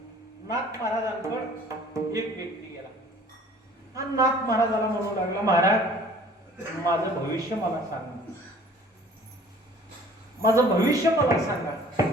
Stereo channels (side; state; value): both; normal; correlation 0.51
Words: नाथ महाराजांकडे एक व्यक्ती गेला. हा नाथ महाराजाला म्हणू लागला, महाराज माझं भविष्य मला सांगा, माझं भविष्य मला सांगा.